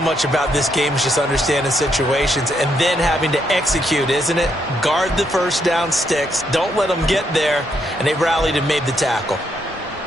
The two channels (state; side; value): normal; both; correlation 0.76